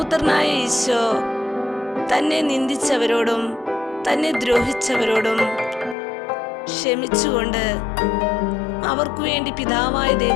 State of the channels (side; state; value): right; drops out; at 6.0 s